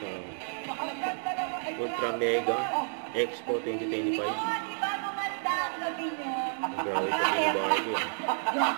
Ultra Mega Expo 2025. Ang grabe pa ni Barbie eh.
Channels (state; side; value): silent; left; digital silence